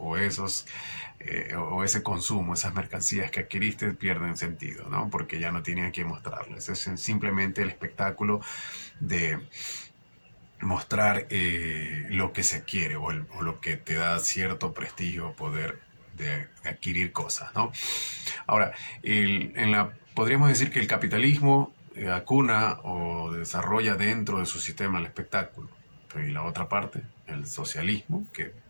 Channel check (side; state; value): both; inverted; correlation -1.00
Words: ese consumo, esas mercancías que adquiriste pierden sentido, ¿no? Porque ya no tienen a quién mostrarles. Es simplemente el espectáculo de mostrar lo que se quiere, o lo que te da cierto prestigio, poder de adquirir cosas, ¿no? Ahora, podríamos decir que el capitalismo acuna o desarrolla dentro de su sistema el espectáculo. Y la otra parte, el socialismo, que